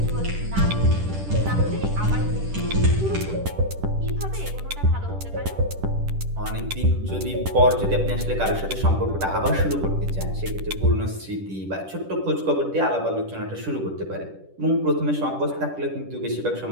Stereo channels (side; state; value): left; late; 10 ms